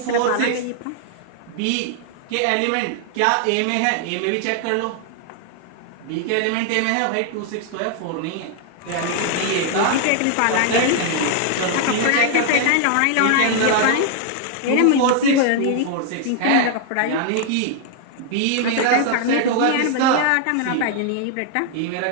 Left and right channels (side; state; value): both; different; correlation 0.00